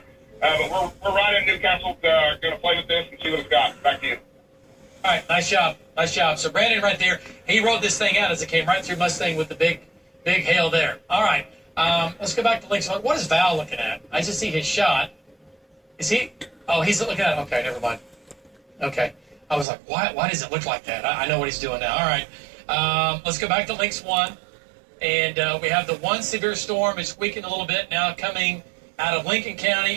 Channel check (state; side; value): drops out; left; at 19.7 s